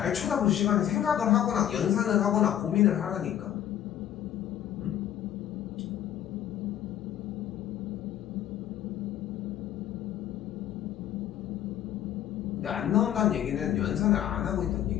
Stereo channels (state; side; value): quieter; right; 11.2 dB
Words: 쳐다볼 시간에 생각을 하거나 연산을 하거나 고민을 하라니까. 응? 근데 안 나온다는 얘기는 연산을 안 하고 있다는